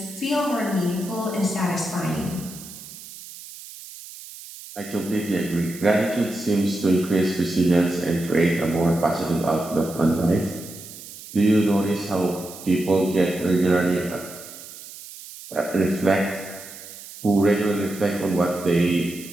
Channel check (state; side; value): noise; right; hiss, 15 dB below the sound